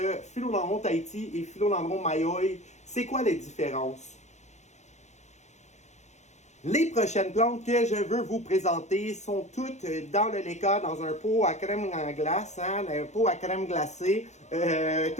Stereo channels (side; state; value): right; late; 0.33 ms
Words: philodendron Tahiti et philodendron Mayoy. C'est quoi les différences? Les prochaines plantes que je veux vous présenter sont toutes dans le Leka, dans un pot à crème glace, hein, un pot à crème glacée,